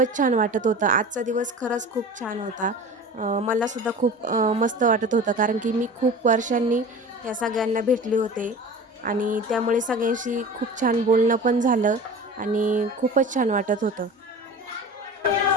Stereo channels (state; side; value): normal; both; correlation 0.36